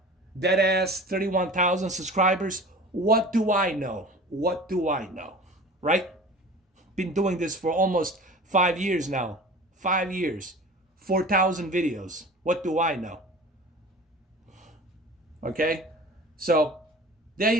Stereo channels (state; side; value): normal; both; correlation 0.40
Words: 31,000 subscribers. What do I know? What do I know? Right? Been doing this for almost 5 years now. 5 years. 4,000 videos. What do I know? Okay? So, there